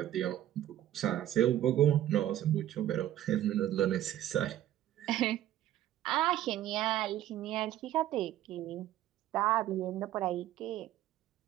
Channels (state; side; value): quieter; left; 12.9 dB